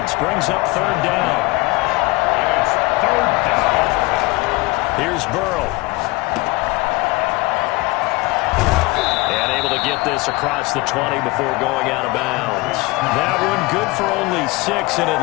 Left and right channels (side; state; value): right; quieter; 23.3 dB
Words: brings up 3rd down. And it's 3rd down. Here's Burrow. And able to get this across the 20 before going out of bounds. That one good for only 6, and it